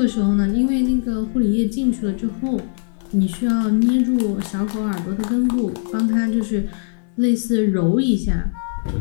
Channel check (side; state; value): right; silent; 63 dB below the other